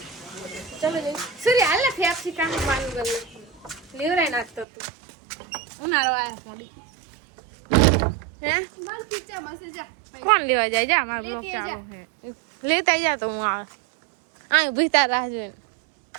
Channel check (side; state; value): left; drops out; at 4.7 s